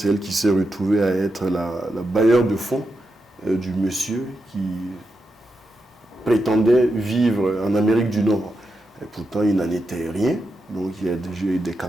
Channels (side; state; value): both; normal; correlation 0.87